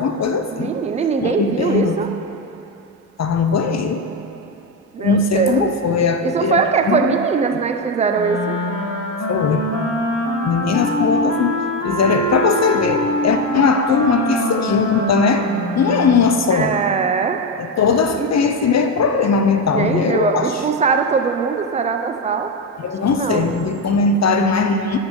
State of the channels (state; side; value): normal; both; correlation 0.10